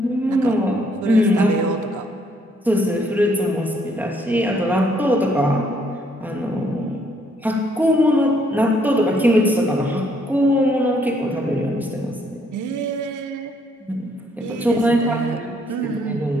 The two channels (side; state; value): both; normal; correlation 0.68